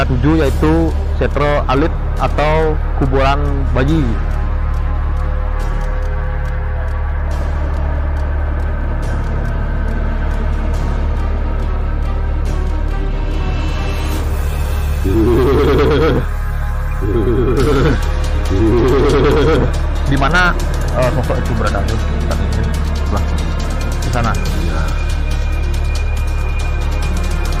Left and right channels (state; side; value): identical; both; correlation 1.00